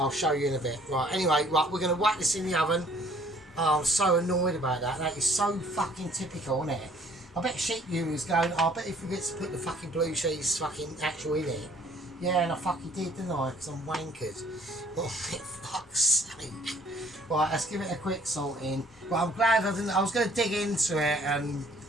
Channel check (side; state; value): both; normal; correlation 0.58